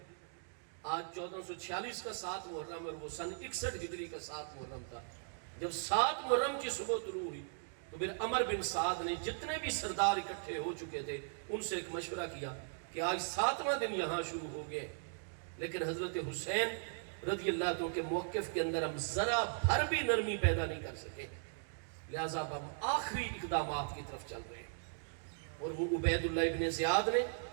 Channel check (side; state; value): left; silent; digital silence